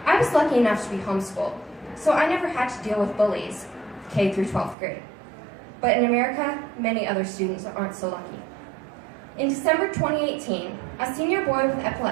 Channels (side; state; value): left; drops out; at 4.8 s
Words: I was lucky enough to be homeschooled, so I never had to deal with bullies, K through 12th grade. But in America, many other students aren't so lucky. In December 2018, a senior boy with